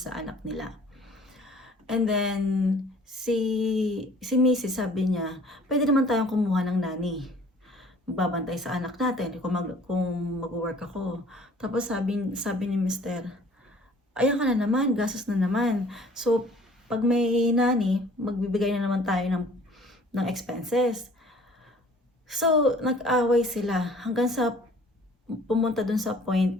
anak nila. And then, si Mrs. sabi niya, pwede naman tayong kumuha ng nanny. Magbabantay sa anak natin kung mag-work ako. Tapos sabi ni Mr., ayan ka na naman, gastos na naman. So, pag may nanny, magbibigay na naman tayo ng expenses. So, nag-away sila hanggang sa pumunta dun sa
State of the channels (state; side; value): normal; both; correlation 0.53